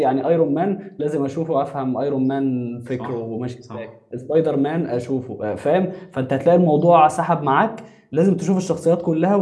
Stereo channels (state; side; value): identical; both; correlation 1.00